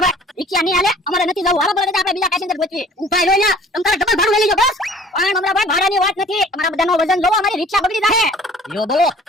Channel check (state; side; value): normal; both; correlation 0.50